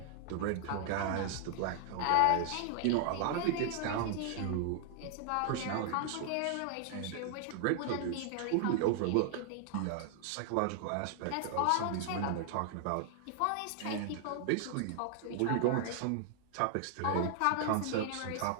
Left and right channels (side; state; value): both; different; correlation 0.00